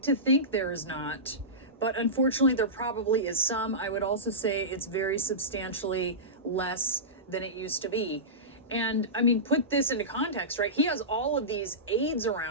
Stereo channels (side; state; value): both; normal; correlation -0.18